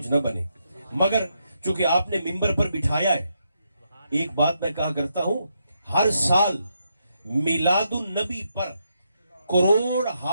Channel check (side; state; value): both; inverted; correlation -0.80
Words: نہ بنے، مگر چونکہ آپ نے ممبر پر بٹھایا ہے، ایک بات میں کہا کرتا ہوں، ہر سال میلاد النبی پر کروڑ